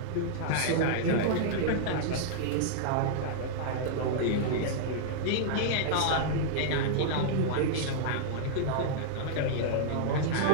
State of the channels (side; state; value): both; different; correlation -0.02